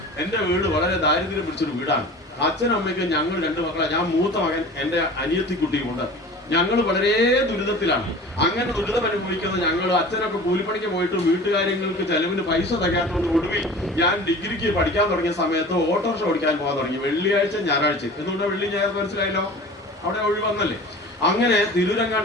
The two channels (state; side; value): normal; both; correlation 0.39